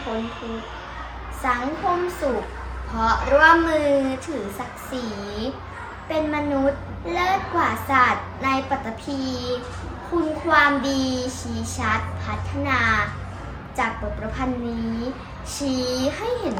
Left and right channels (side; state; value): both; identical; correlation 1.00